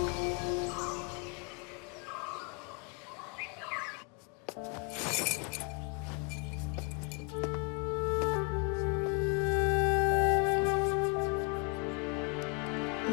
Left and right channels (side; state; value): right; quieter; 34.5 dB